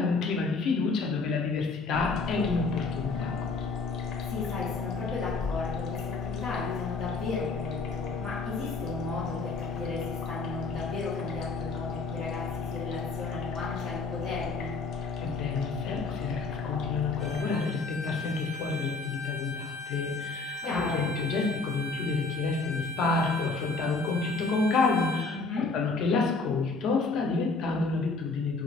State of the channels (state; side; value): quieter; right; 3.9 dB